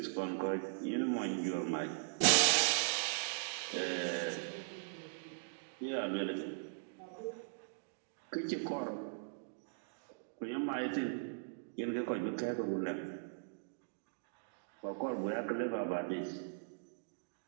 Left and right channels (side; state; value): left; silent; digital silence